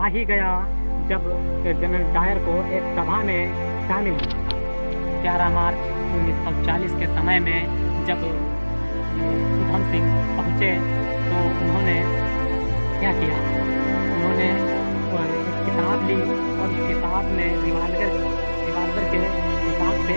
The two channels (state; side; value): inverted; both; correlation -1.00